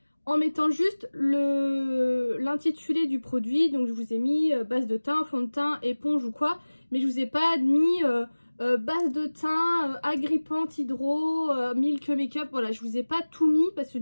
en mettant juste l'intitulé du produit. Donc, je vous ai mis base de teint, fond de teint, éponge ou quoi. Mais je vous ai pas mis base de teint, agrippante, hydro, milk make-up. Voilà, je vous ai pas tout mis parce que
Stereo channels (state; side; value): inverted; both; correlation -1.00